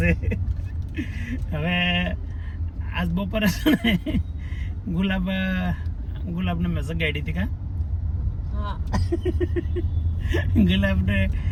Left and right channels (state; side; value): identical; both; correlation 1.00